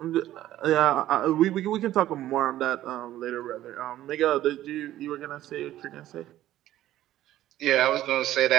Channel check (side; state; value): left; quieter; 13.7 dB